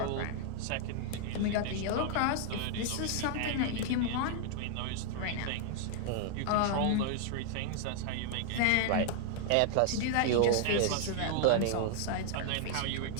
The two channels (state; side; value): different; both; correlation 0.00